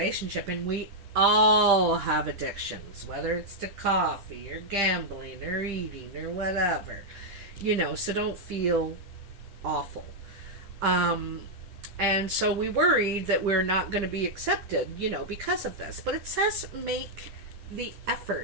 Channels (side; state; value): left; late; 10 ms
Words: and we all have addictions, whether it's to coffee or gambling or eating or whatever, so don't feel awful. And so we worried that we're not going to be accepted, because of this. But it says make the